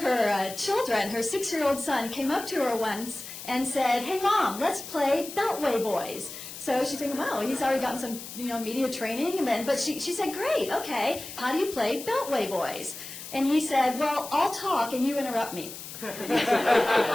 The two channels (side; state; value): left; noise; hiss, 11 dB below the sound